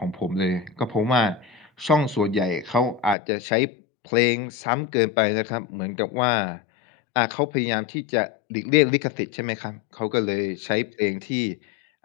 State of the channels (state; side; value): drops out; right; at 3.2 s